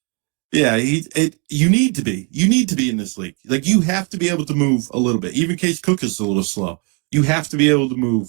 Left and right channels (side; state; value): left; quieter; 36.4 dB